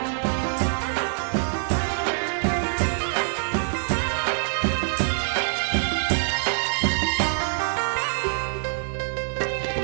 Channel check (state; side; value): silent; left; digital silence